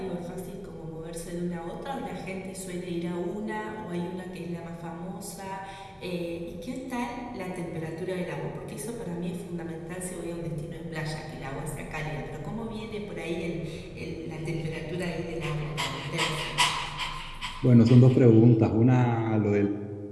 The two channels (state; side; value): identical; both; correlation 1.00